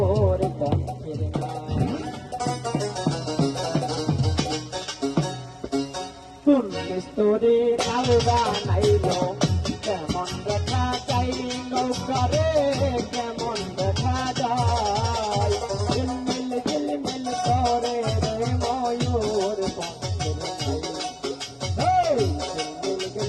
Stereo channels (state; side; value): identical; both; correlation 1.00